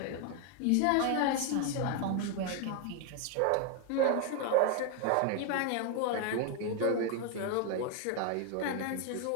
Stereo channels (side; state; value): both; different; correlation 0.00